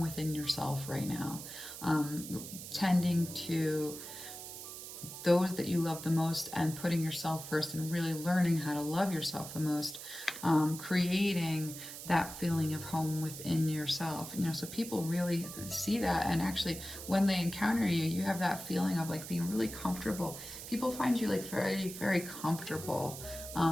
within yourself right now, tending to those that you love the most and putting yourself first and really learning how to love yourself the most, creating that feeling of home within yourself. So people really see that, and actually when they encounter you, you have that feeling of like being really comfortable. People find you like very, very comfortable,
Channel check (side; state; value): right; noise; hiss, 11 dB below the sound